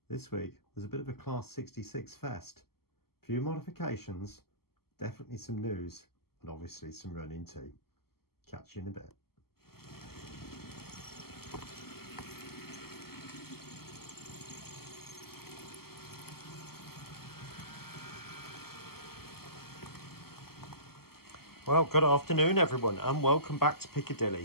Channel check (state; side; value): late; right; 0.95 ms